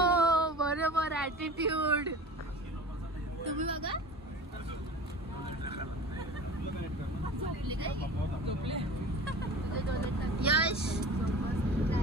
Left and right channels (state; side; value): normal; both; correlation 0.38